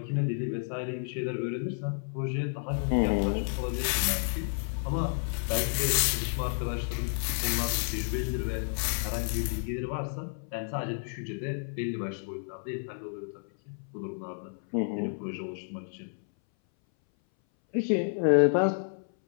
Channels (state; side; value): silent; right; 57 dB below the other